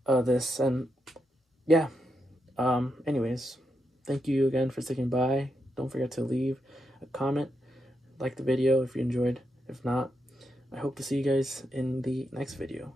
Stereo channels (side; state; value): both; normal; correlation 0.84